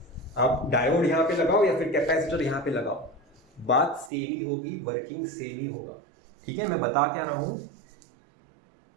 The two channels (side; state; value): left; drops out; at 4.1 s